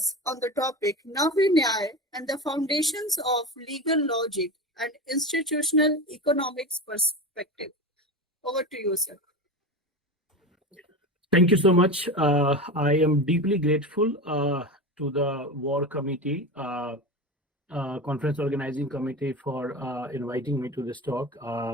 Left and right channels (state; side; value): normal; both; correlation 0.24